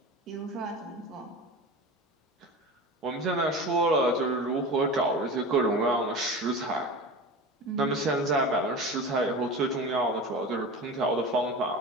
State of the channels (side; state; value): both; normal; correlation 0.31